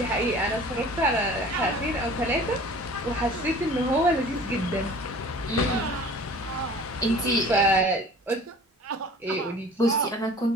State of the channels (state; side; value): normal; both; correlation 0.45